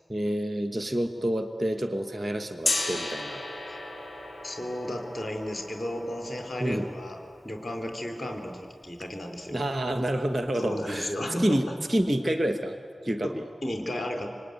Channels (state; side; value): normal; both; correlation 0.95